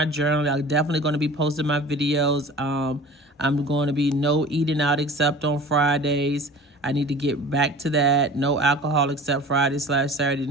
journal. I'm definitely going to be posting my videos. I'm going to be no eating out except on Fridays. I need to get back to that. No alcohol except Friday/Saturday.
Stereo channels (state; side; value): normal; both; correlation 0.41